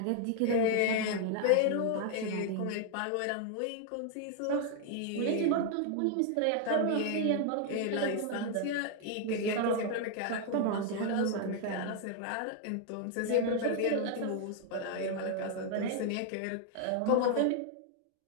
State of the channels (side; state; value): both; different; correlation 0.00